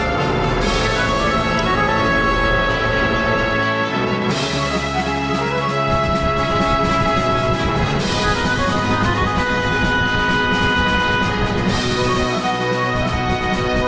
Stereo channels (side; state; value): both; identical; correlation 1.00